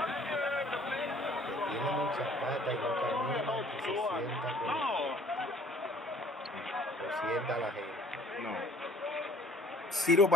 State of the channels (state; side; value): normal; both; correlation 0.58